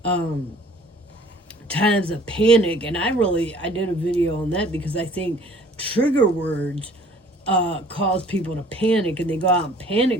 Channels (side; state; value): both; normal; correlation 0.53